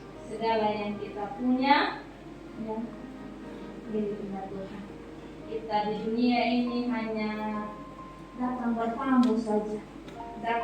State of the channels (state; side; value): identical; both; correlation 1.00